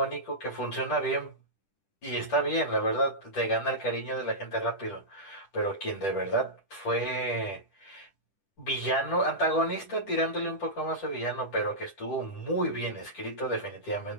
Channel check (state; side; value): late; right; 10 ms